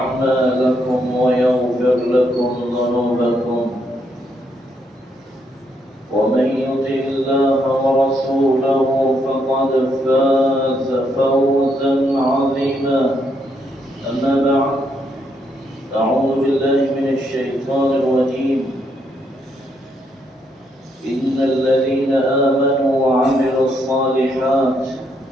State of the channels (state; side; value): normal; both; correlation 0.76